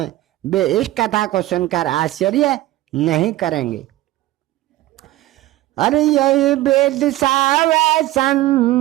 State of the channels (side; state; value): left; quieter; 16.1 dB